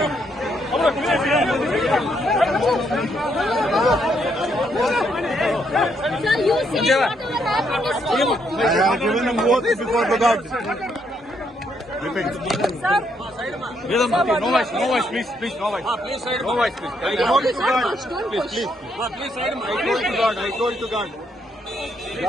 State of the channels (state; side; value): normal; both; correlation 0.74